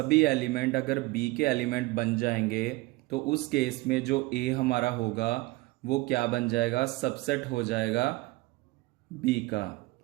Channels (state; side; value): quieter; left; 21.2 dB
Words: एलिमेंट अगर B के एलिमेंट बन जाएंगे तो उस केस में जो A हमारा होगा वो क्या बन जाएगा? सबसेट हो जाएगा B का।